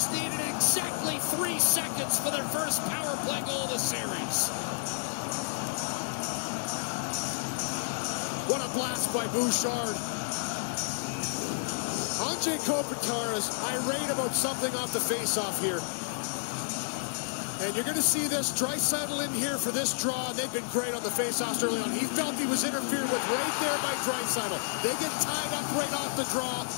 needed exactly 3 seconds for their first power play goal of the series. What a blast by Bouchard. Andrei Kopitar is irate about something off the faceoff here. And you're going to see this. Draisaitl in here for this draw, and they've been great on the faceoffs early on. He felt he was interfered with right there by Draisaitl. They get tied up right off the draw,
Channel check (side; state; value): right; silent; digital silence